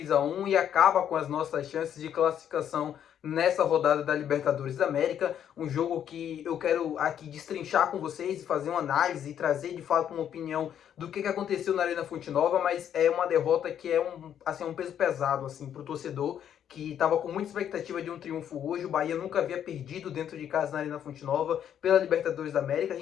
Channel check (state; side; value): quieter; right; 9.5 dB